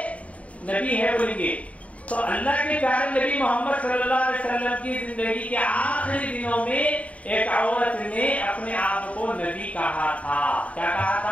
نبی ہے بولیں گے. تو اللہ کے پیارے نبی محمد صلی اللہ علیہ وسلم کی زندگی کے آخری دنوں میں ایک عورت نے اپنے آپ کو نبی کہا تھا. کیا کہا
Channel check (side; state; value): right; late; 0.067 ms